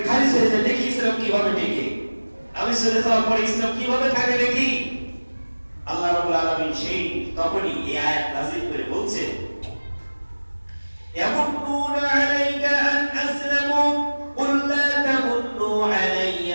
খারিজ হয়ে যায়, দেখি ইসলাম কিভাবে টিকে, আমি চলে যাওয়ার পরে ইসলাম কিভাবে থাকে দেখি। আল্লাহ রাব্বুল আলামিন সেই তখনই এই আয়াত নাযিল করে বলছেন ইয়ামুন্নুনা আলাইকা আন আসলামু কুল লা তামুন্নু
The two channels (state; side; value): inverted; both; correlation -1.00